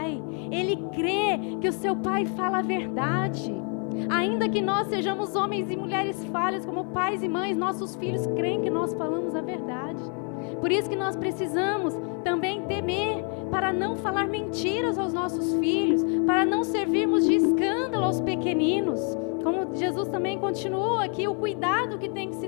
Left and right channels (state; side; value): quieter; right; 39.2 dB